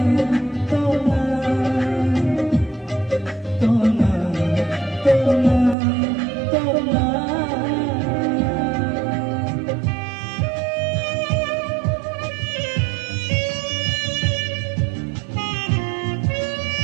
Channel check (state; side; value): drops out; left; at 5.8 s